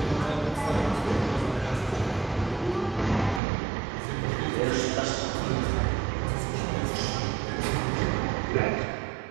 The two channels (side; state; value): left; drops out; at 3.4 s